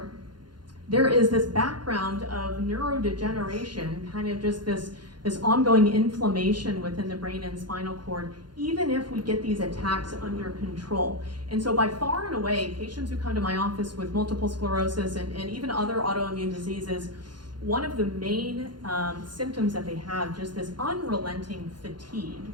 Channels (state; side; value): late; left; 0.71 ms